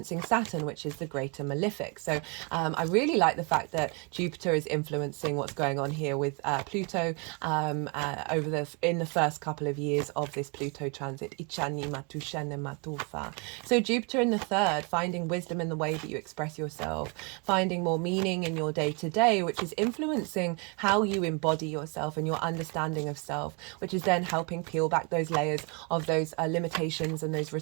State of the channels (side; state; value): left; quieter; 33.3 dB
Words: Saturn, which is the greater malefic. So I really like the fact that Jupiter is influencing what's going on here with Pluto in the first couple of years of this Pluto transit. So Jupiter in the 3rd, finding wisdom in the way that you express yourself, finding more meaning in your day-to-day, which is influencing how you embody yourself and your understanding of self, which is then helping peel back those layers of those limitations and those